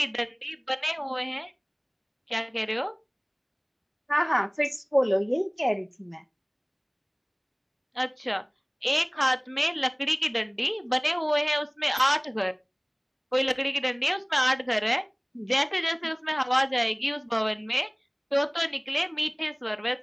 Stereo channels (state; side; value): identical; both; correlation 1.00